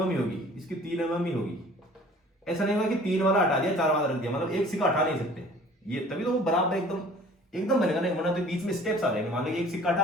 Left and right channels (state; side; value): normal; both; correlation 0.49